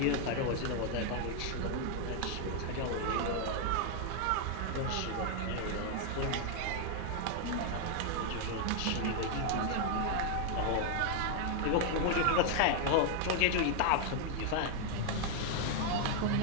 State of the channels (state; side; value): different; both; correlation 0.00